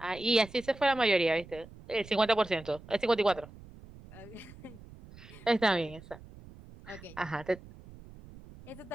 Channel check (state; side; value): noise; right; rumble, 19 dB below the sound